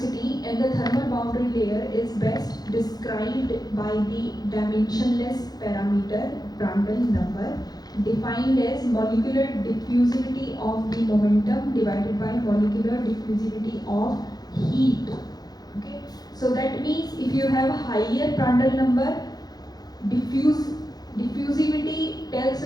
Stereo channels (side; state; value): right; late; 0.19 ms